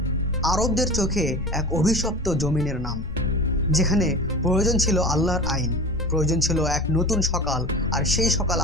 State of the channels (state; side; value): noise; left; rumble, 10 dB below the sound